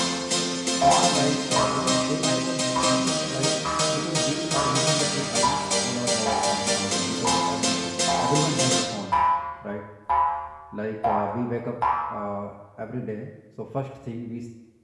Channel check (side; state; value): both; identical; correlation 1.00